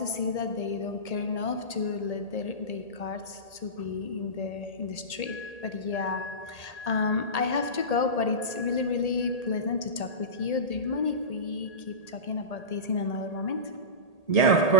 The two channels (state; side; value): late; right; 1.8 ms